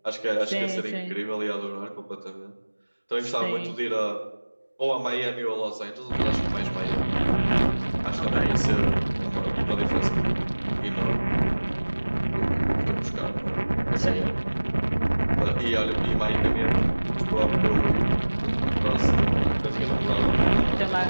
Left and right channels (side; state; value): both; inverted; correlation -1.00